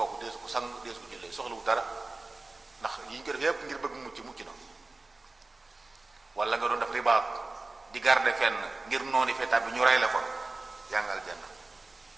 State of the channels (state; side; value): quieter; left; 3.3 dB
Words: deesu ko sang deesu ko jullee soxlawu dara, ndax yi ñu ko def yépp ngir bëgg mucc na. wala nga doon def ribaat di garder fenn ngir noonu fee tàbbi ñu rey la fa yaa ngi aljanna.